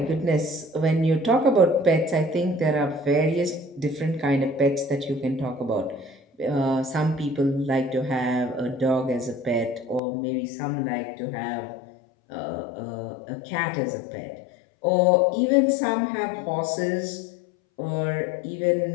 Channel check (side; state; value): right; drops out; at 10.0 s